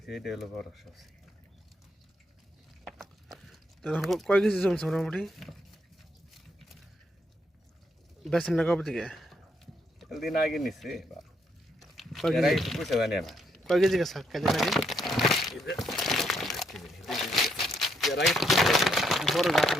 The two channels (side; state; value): both; normal; correlation 0.75